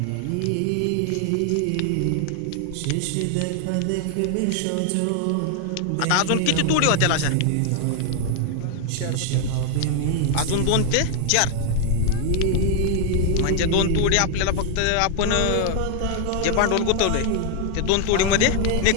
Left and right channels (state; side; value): different; both; correlation 0.00